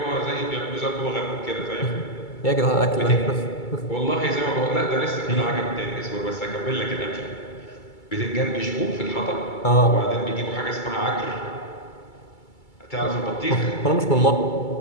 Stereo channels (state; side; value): late; right; 2.3 ms